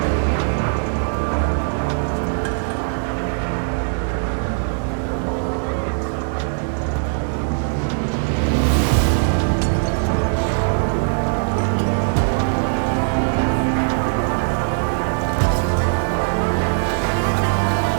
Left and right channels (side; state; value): left; silent; digital silence